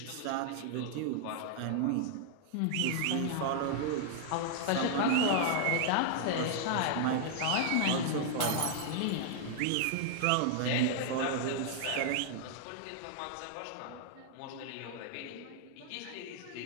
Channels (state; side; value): different; both; correlation -0.01